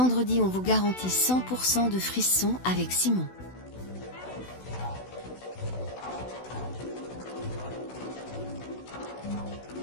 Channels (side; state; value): right; late; 16 ms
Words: on vous garantit 100% de frissons avec Simon.